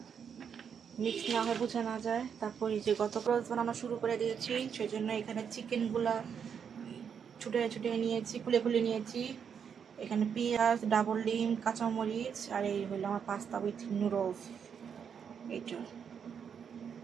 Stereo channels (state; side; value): quieter; left; 7.3 dB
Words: মিক্স না হয়, বোঝা না যায়। তারপর এই যে গত রোজ বানানো শুরু করে দিয়েছি, সেই জন্য এখানে চিকেনগুলা ছুটে ছুটে নিয়েছি, খুলে খুলে নিয়েছি। এখানে পেঁয়াজ, ডাবল ডিম, কাঁচামরিচ, আর এই হলো আমার পাস্তা উইথ নুডলস। এইটা